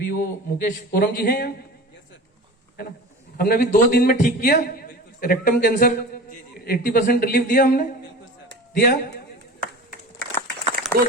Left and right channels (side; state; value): both; normal; correlation 0.35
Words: वो मुकेश कोरम जी हैं यहाँ, है ना, हमने अभी 2 दिन में ठीक किया रेक्टम कैंसर, 80% रिलीफ दिया हमने, दिया 2